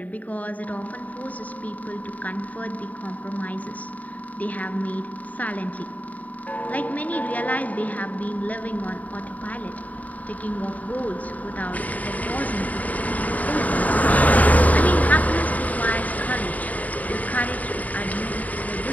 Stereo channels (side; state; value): right; late; 0.073 ms